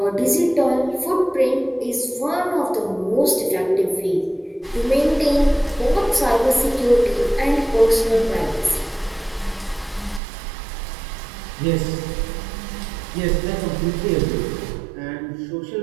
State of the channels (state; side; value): drops out; left; at 10.2 s